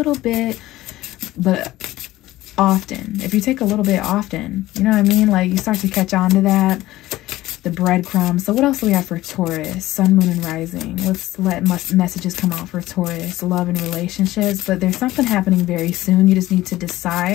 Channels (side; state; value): right; quieter; 16.4 dB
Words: bit, but often. If you take a little bit often, you know what I mean? Like, you start to catch on to that. The breadcrumbs. So what else do we have for Taurus? Sun, moon, and rising. Let's let messages come out for Taurus. Love and relationships. But there's something happening very soon. You just need to